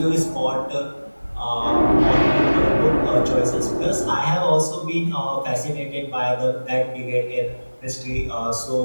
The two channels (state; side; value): inverted; both; correlation -1.00